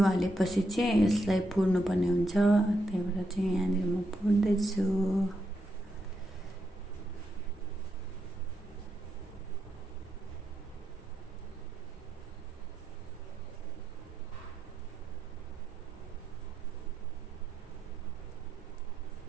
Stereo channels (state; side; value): normal; both; correlation 0.82